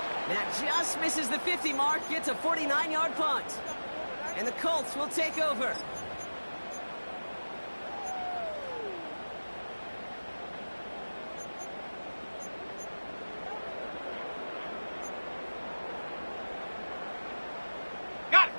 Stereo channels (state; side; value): inverted; both; correlation -1.00